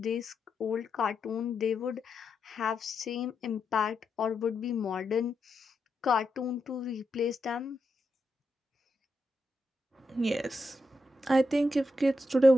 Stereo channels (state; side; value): normal; both; correlation 0.85